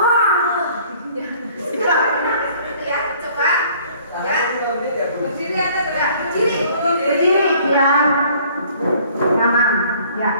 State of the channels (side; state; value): both; inverted; correlation -0.56